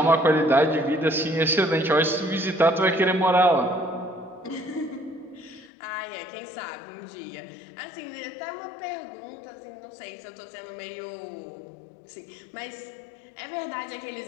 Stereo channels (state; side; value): drops out; right; at 5.7 s